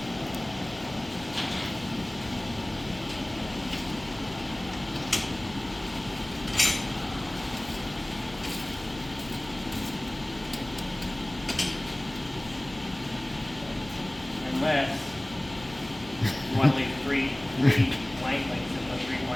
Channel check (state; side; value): noise; left; hum, 18 dB below the sound